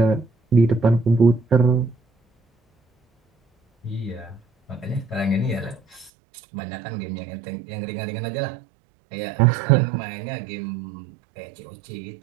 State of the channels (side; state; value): left; drops out; at 6.1 s